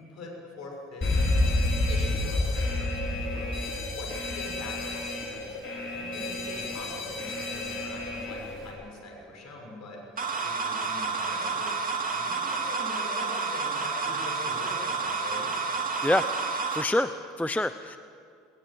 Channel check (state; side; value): normal; both; correlation 0.42